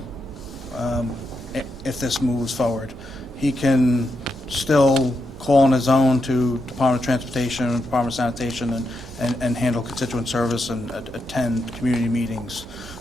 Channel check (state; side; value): normal; both; correlation 0.84